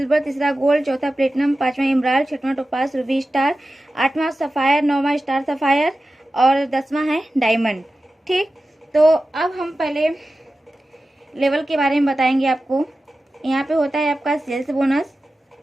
तीसरा गोल्ड, चौथा प्लेटिनम, पांचवा इमराल्ड, छठवां टोपाज, रूबी स्टार, आठवां सफायर, नौवां स्टार सफायर और 10वां है डायमंड। ठीक, तो अब हम पहले लेवल के बारे में बताएंगे आपको। यहाँ पे होता है आपका सेल्स बोनस,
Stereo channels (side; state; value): both; normal; correlation 0.94